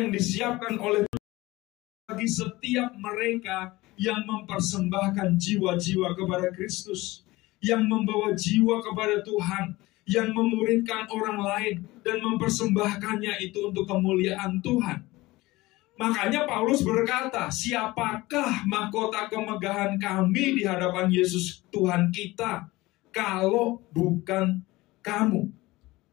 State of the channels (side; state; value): right; quieter; 19.8 dB